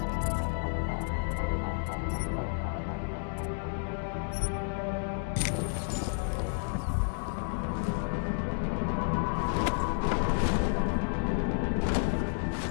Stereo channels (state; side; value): silent; right; digital silence